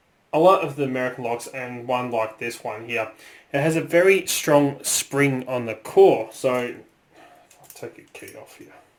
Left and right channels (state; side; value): identical; both; correlation 1.00